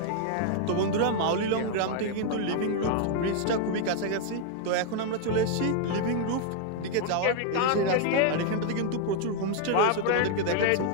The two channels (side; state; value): both; different; correlation 0.00